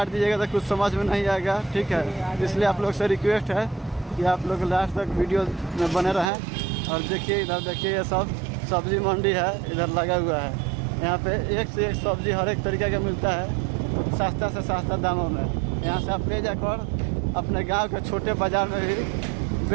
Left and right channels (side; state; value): left; drops out; at 6.3 s